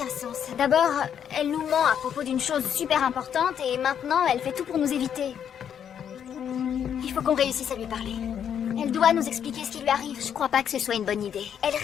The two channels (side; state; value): right; quieter; 8.6 dB